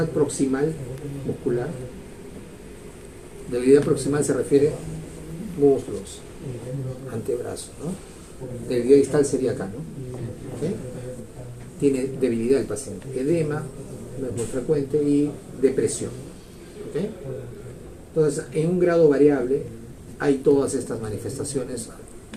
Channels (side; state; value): both; identical; correlation 1.00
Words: proximal muscular. Debilidad proximal se refiere a muslos, antebrazos, ¿no? Debilidad distal sería acá, ¿no? ¿Okay? Tiene debilidad el paciente, edema, no es muy frecuente, y depresión. ¿Okay? Entonces, en un grado variable hay todas estas manifestaciones,